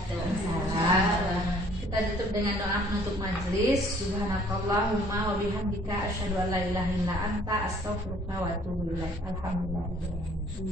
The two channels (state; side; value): normal; both; correlation 0.57